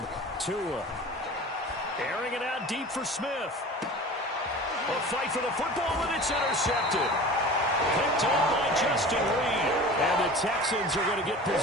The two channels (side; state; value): both; normal; correlation 0.38